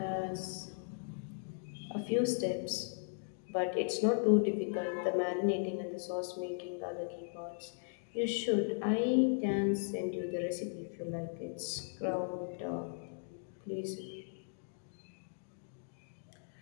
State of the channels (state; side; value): silent; right; digital silence